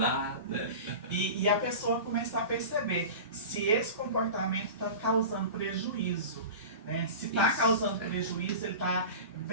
né? E a pessoa começar a perceber se esse comportamento está causando prejuízo. Né? Se está causando prejuízo, ele está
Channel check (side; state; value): both; inverted; correlation -0.32